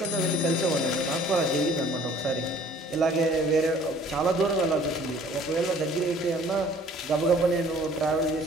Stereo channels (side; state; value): both; normal; correlation 0.54